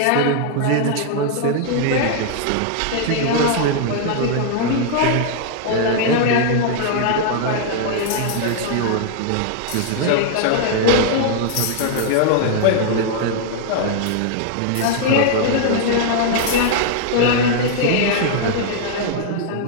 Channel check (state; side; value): different; both; correlation -0.01